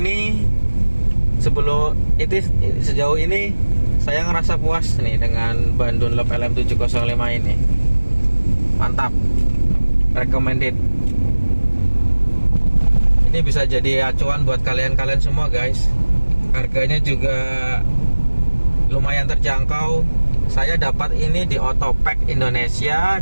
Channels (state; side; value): inverted; both; correlation -1.00